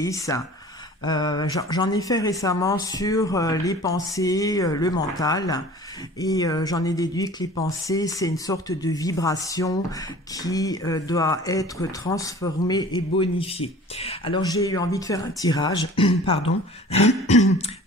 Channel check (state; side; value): normal; both; correlation 0.44